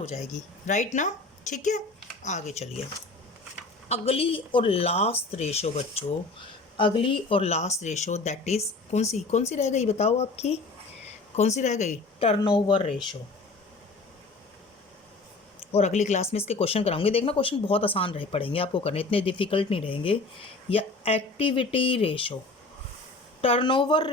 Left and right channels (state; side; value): quieter; right; 3.4 dB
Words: जाएगी, राइट ना। ठीक है, आगे चलिए। अगली और लास्ट रेशो बच्चों, अगली और लास्ट रेशो दैट इज़ कौन सी रह गई बताओ आपकी, कौन सी रह गई, टर्नओवर रेशो। और अगली क्लास में इसके क्वेश्चन कराऊंगे, देखना क्वेश्चन बहुत आसान रहे पड़ेंगे आपको करने, इतने डिफिकल्ट नहीं रहेंगे। या एक्टिविटी रेशो, टर्नओवर